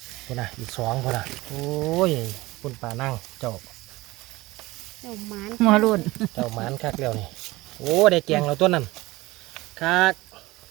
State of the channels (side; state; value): left; quieter; 20.1 dB